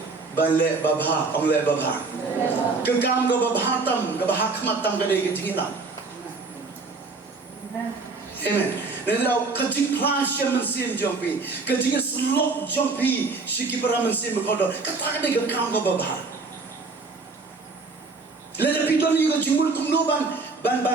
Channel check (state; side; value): quieter; left; 4.0 dB